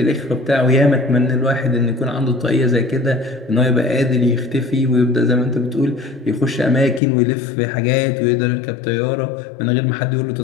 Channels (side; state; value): right; drops out; at 7.0 s